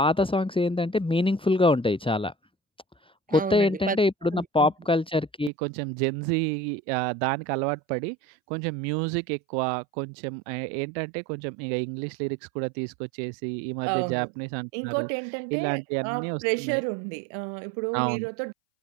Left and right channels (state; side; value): drops out; left; at 5.5 s